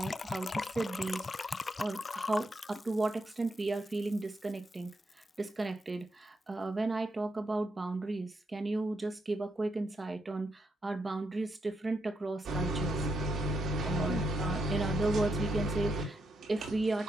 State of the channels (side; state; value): both; normal; correlation 0.81